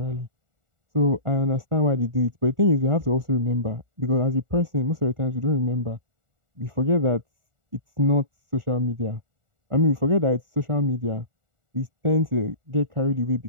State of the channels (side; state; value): left; late; 1.4 ms